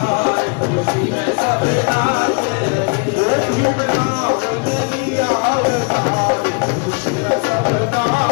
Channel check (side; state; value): right; quieter; 35.7 dB